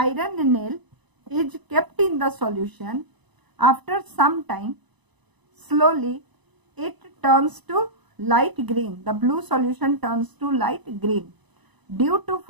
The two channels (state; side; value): late; left; 1.0 ms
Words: is kept in the solution, After some time, slowly it turns to light green. The blue solution turns to light green due to